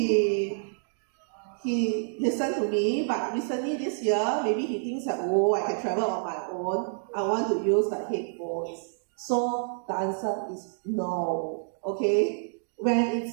listened to me, but recently this year, maybe he thinks that, oh, I can travel on my own. I want to use the headphones. So the answer is no. Okay? When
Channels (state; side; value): silent; left; digital silence